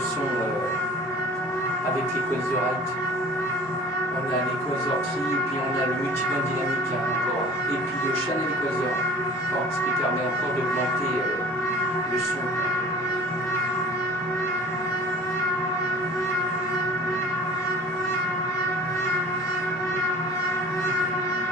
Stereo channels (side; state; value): both; normal; correlation 0.45